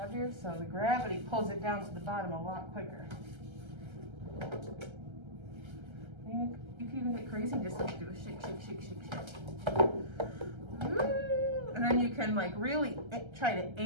so the gravity pulls it down to the bottom a lot quicker. You can even get crazy and just like do a shake, shake, shake, shake, shake. Ooh. And then you can like really try to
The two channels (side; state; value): left; late; 1.3 ms